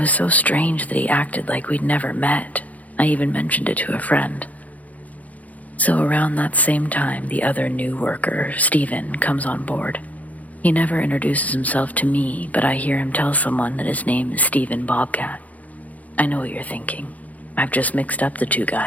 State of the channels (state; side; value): late; right; 0.074 ms